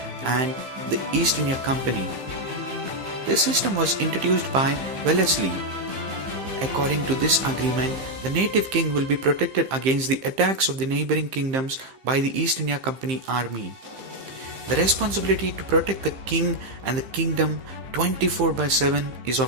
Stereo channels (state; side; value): late; left; 15 ms